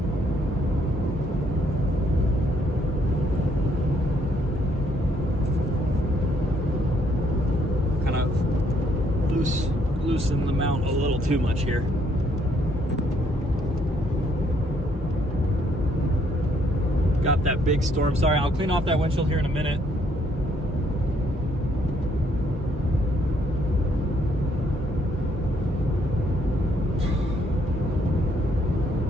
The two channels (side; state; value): both; normal; correlation 0.69